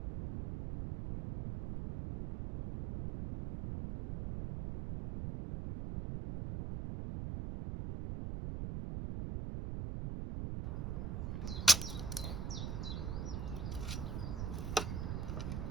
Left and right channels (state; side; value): noise; right; rumble, 2 dB below the sound